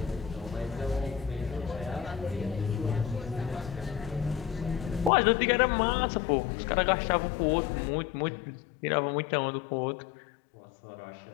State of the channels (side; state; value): right; drops out; at 5.1 s